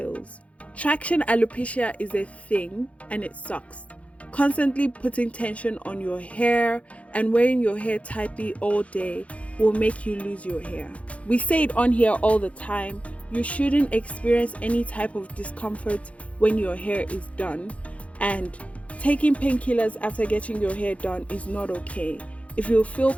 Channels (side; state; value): right; late; 0.064 ms